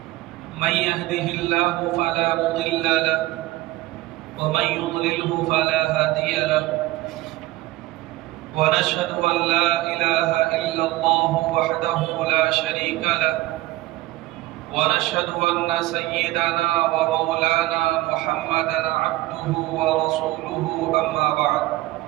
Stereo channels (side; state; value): left; quieter; 17.9 dB